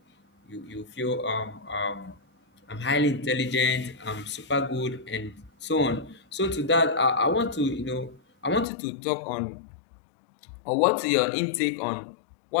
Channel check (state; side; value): drops out; right; at 8.7 s